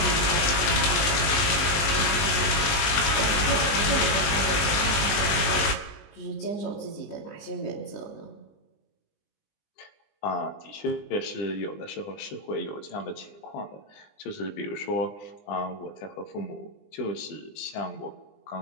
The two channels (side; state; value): right; late; 20 ms